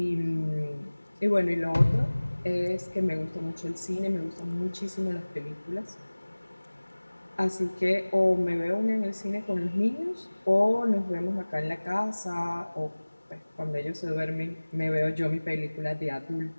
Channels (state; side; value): inverted; both; correlation -1.00